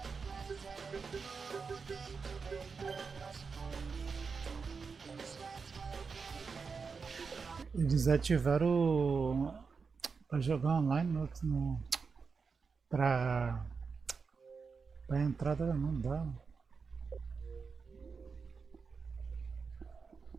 Eles ativaram para jogar online para entrada não dá.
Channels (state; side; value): quieter; left; 5.1 dB